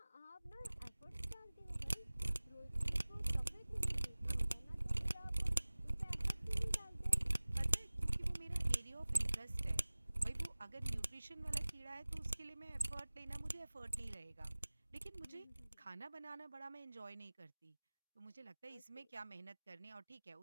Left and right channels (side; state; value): both; inverted; correlation -1.00